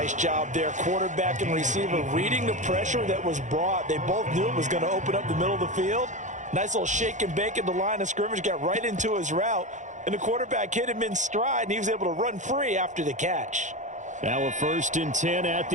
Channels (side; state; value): left; late; 0.35 ms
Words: job there. Quarterback and receiver reading the pressure that was brought. They both knew it was going to open up the middle of the field. Nice little shake and bake at the line of scrimmage. Got right into his route. And the quarterback hit him in stride, and he was able to run free after the catch. Now a 1st and 10 at